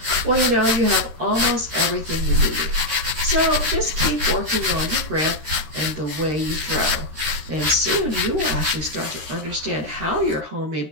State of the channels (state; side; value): late; left; 13 ms